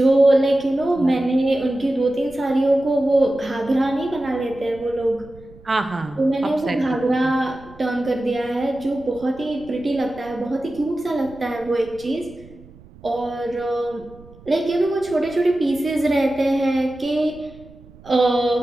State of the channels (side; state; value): right; noise; rumble, 22 dB below the sound